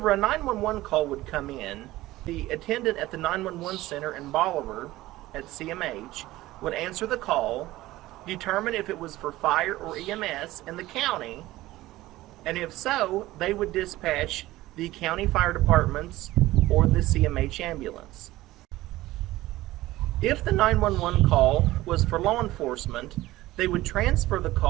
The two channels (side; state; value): left; quieter; 17.1 dB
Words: a 911 call would come in, the attendant at the 911 center in Bolivar at CMH would answer the call, determine if it was for fire or EMS in the county, and if so, they would dispatch the county fire departments or the CMH ambulance. If the 911 call was for law enforcement, they would transfer the